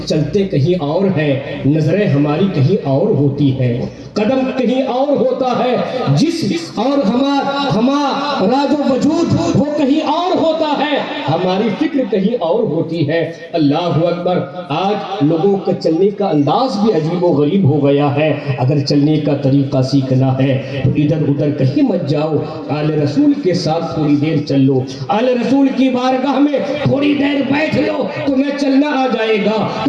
چلتے کہیں اور ہیں، نظریں ہماری کہیں اور ہوتی ہیں، قدم کہیں اور ہوتا ہے، جسم اور ہمارا جو وجود وہ کہیں اور ہوتا ہے، ہماری فکر کہیں اور ہوتی ہے۔ اللہ اکبر، آج لوگوں کا چلنے کا انداز بھی عجیب و غریب ہو گیا ہے۔ اگر چلنے کا طریقہ سیکھنا ہے تو ادھر ادھر کہیں مت جاؤ، آل رسول کے ساتھ تھوڑی دیر چل لو، آل رسول کی بارگاہ میں تھوڑی دیر بیٹھ لو، تمہیں چلنا آ جائے گا،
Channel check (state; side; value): identical; both; correlation 1.00